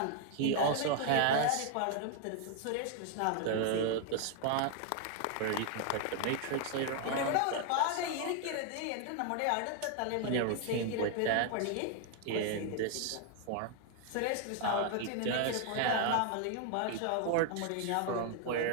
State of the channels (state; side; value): different; both; correlation 0.00